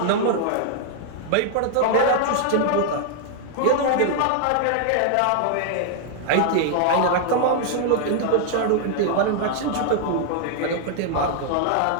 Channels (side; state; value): both; different; correlation 0.00